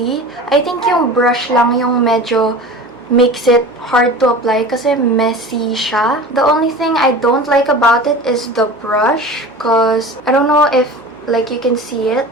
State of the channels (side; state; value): both; normal; correlation 0.35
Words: I think yung brush lang yung medyo makes it hard to apply kasi messy siya. The only thing I don't like about it is the brush because I don't know if like you can see it,